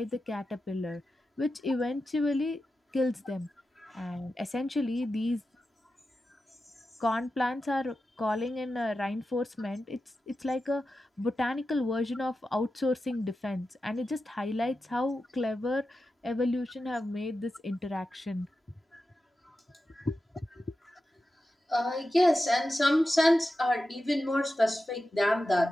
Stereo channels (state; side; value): normal; both; correlation 0.92